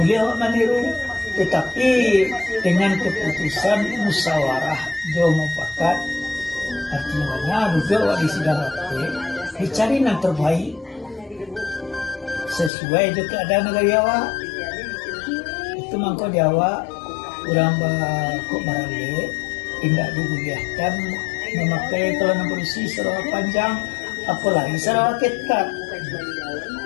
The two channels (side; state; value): right; drops out; at 12.7 s